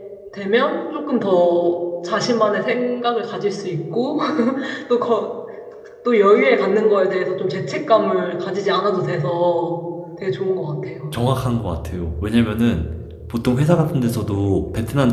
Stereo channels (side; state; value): both; identical; correlation 1.00